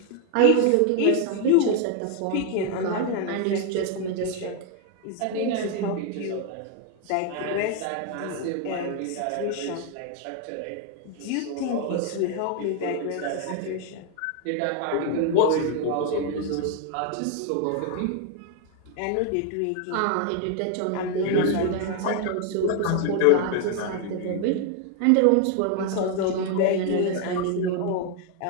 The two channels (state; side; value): different; both; correlation 0.01